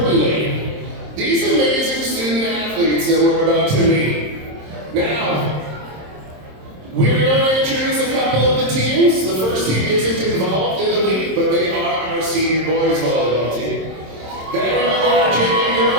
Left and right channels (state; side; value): late; left; 26 ms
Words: these amazing student athletes that we're about to meet. Now, we're going to introduce a couple of the teams. The first team isn't involved in the league, but they are our senior boys volleyball team. Then we are our junior